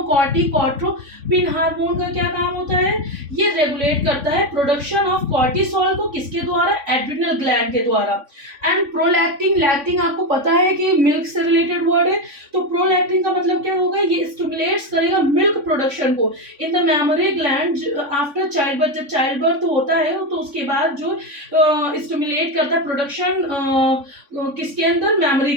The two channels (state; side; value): late; left; 3.5 ms